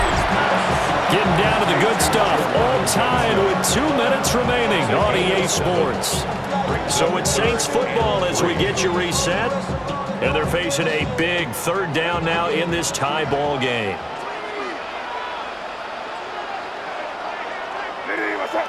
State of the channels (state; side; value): identical; both; correlation 1.00